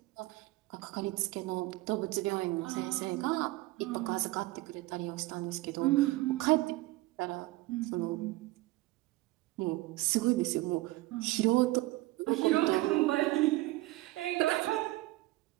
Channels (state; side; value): quieter; left; 19.6 dB